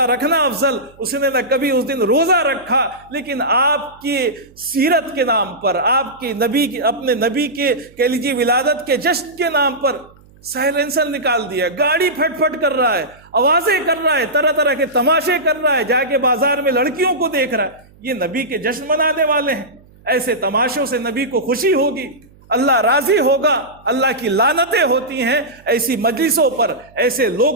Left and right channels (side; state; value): right; noise; hum, 27 dB below the sound